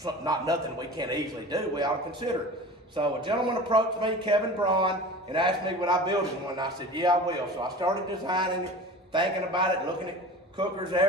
not nothing we can't easily do. We ought to consider it. So a gentleman approached me, Kevin Braun, and asked me would I build him one. And I said, yeah, I will. So I started designing it, thinking about it, looking at cookers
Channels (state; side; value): normal; both; correlation 0.36